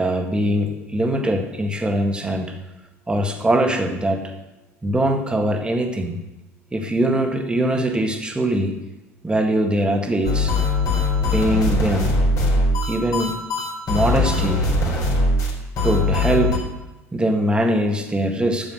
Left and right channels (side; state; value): both; normal; correlation 0.61